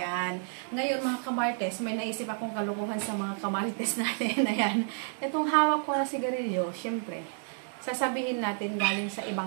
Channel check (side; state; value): left; silent; 58 dB below the other